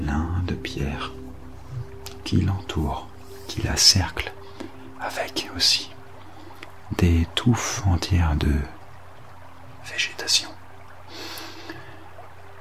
de pierres qui l'entourent, qui la cerclent, avec aussi des touffes entières de végétation.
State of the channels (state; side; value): identical; both; correlation 1.00